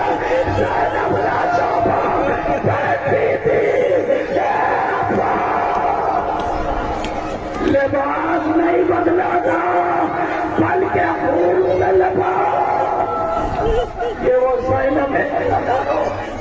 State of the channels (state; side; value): identical; both; correlation 1.00